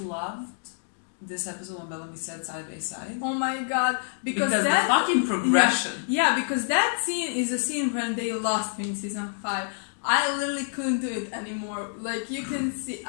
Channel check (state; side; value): silent; right; digital silence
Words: this episode when Bellamy said side by side. Oh my god, because that, the fucking progression. Yeah, because that scene is a scene when they lost me in season 5. I literally couldn't do it anymore. Like, you can see,